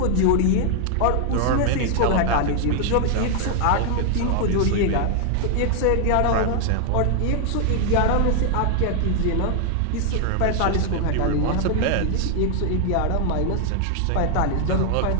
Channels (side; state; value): both; different; correlation 0.00